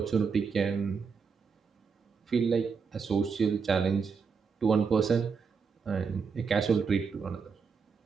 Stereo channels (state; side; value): quieter; left; 5.6 dB